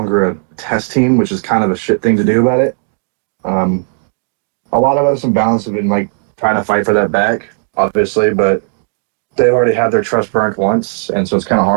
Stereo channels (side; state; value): left; silent; digital silence